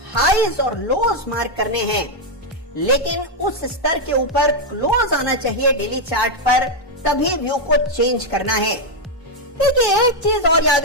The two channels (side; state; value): both; normal; correlation 0.01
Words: हाईज और लोज मार्क करने हैं, लेकिन उस स्तर के ऊपर क्लोज आना चाहिए डेली चार्ट पर, तभी व्यू को चेंज करना है। देखिए एक चीज और याद